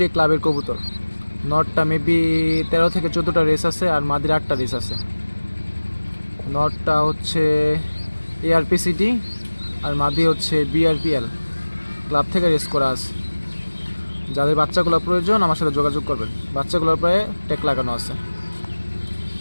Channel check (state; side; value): inverted; both; correlation -1.00